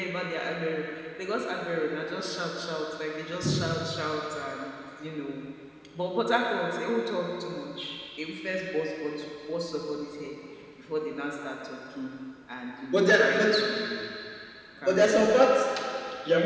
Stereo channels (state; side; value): identical; both; correlation 1.00